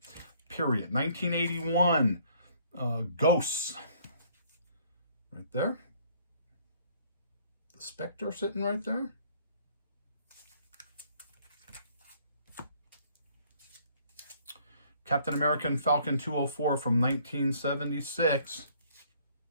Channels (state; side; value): inverted; both; correlation -0.60